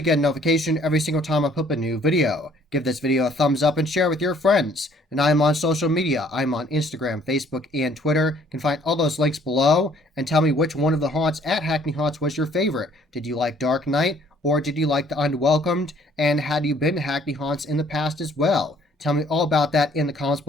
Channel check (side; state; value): both; normal; correlation 0.60